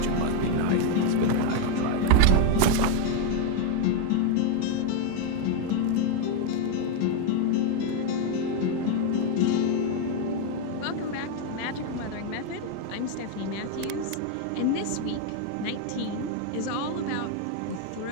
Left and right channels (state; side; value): different; both; correlation 0.02